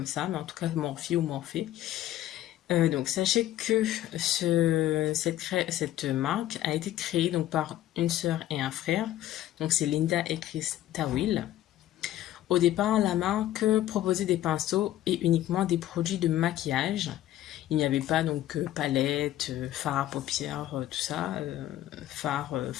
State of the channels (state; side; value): quieter; right; 13.4 dB